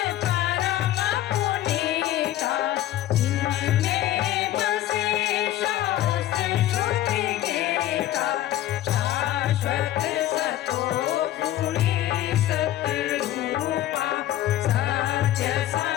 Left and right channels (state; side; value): quieter; right; 13.4 dB